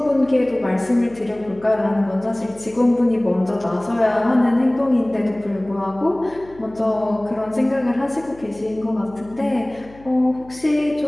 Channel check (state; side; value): noise; left; hum, 23 dB below the sound